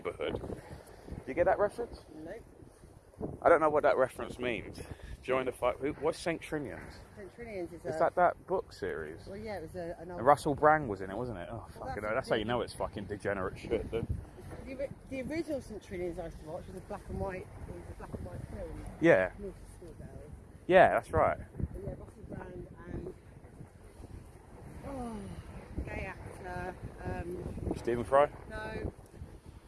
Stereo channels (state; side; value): identical; both; correlation 1.00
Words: Do you get that reference? No. I don't know what that reference means. Join the fight. What's St. Trinians? St. Trinians is Is that book series? Well, yeah, it was an old... And Russell Brand was in it, wasn't it? Oh, Well, fucking that's hell. That's how you know it's fucking degenerate shit, dude. The original St. Trinians I used to watch was a black and white. It was a black and white film. Yeah. North Schoolberry. Yeah, that's right. But yeah, Russell Brand and gay actor. Stephen Fry? No.